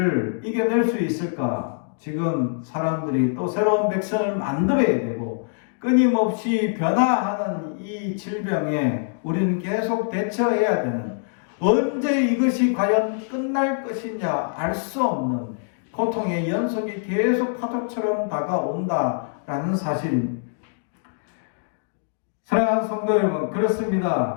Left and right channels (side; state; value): right; silent; digital silence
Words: 이겨낼 수 있을까? 지금 사람들이 또 새로운 백신을 만들어야 되고 끊임없이 변화하는 이 질병에 우리는 계속 대처해야 되는, 언제 이것이 과연 끝날 것이냐 알 수 없는 고통의 연속이 계속 파도처럼 다가온다라는 사실입니다. 사랑하는 성도 여러분,